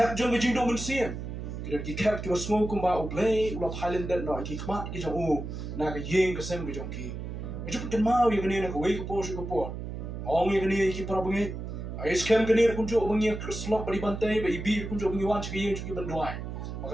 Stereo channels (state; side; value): noise; right; hum, 7 dB below the sound